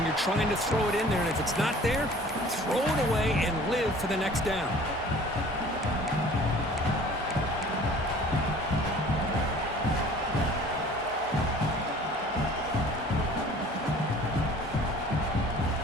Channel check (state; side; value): normal; both; correlation 0.48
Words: you're trying to throw it in there. And if it's not there, throw it away and live for the next down.